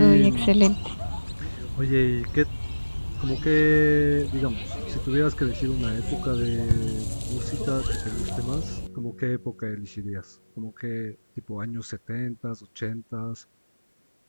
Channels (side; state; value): both; inverted; correlation -1.00